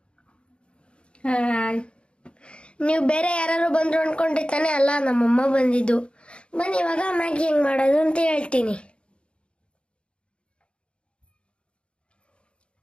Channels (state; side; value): late; right; 0.057 ms